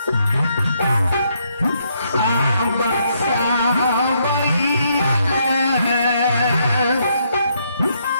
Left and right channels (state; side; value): inverted; both; correlation -0.74